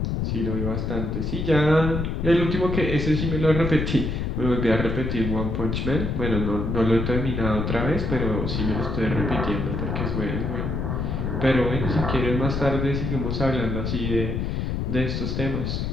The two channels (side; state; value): left; noise; rumble, 1 dB below the sound